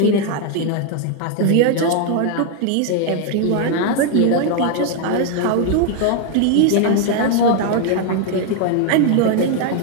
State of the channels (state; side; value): different; both; correlation 0.00